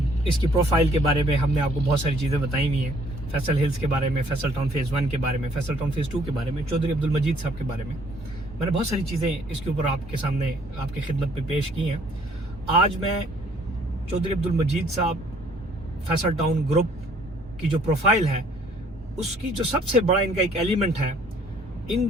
इसकी प्रोफाइल के बारे में हमने आपको बहुत सारी चीज़ें बताई हुई हैं। फैसल हिल्स के बारे में, फैसल टाउन फेज़ 1 के बारे में, फैसल टाउन फेज़ 2 के बारे में, चौधरी अब्दुल मजीद साहब के बारे में। मैंने बहुत सारी चीज़ें इसके ऊपर आपके सामने, आपकी खिदमत में पेश की हैं। आज मैं चौधरी अब्दुल मजीद साहब फैसल टाउन ग्रुप की जो प्रोफाइल है, उसकी जो सबसे बड़ा इनका एक एलिमेंट है,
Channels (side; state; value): both; normal; correlation 0.61